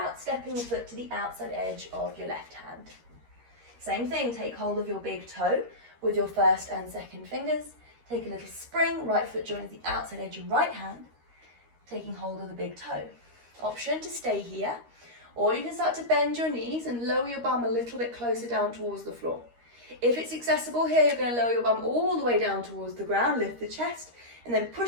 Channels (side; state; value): left; late; 13 ms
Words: stepping the foot to the outside edge of your left hand. Same thing, take hold of your big toe with your first and second fingers. Take a little spring, right foot joins the outside edge of right hand, taking hold of the big toe. Option to stay here, or you can start to bend your knees and lower your bum a little bit closer down towards the floor. If it's accessible here, you're going to lower your bum all the way down towards the ground, lift the chest, and then